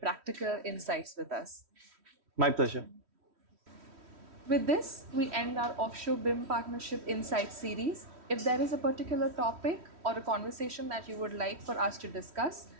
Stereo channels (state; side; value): late; left; 3.1 ms